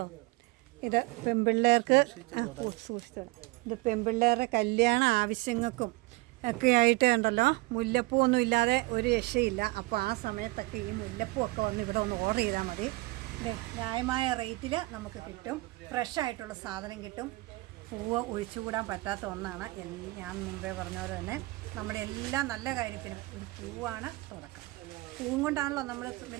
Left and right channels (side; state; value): left; quieter; 22.1 dB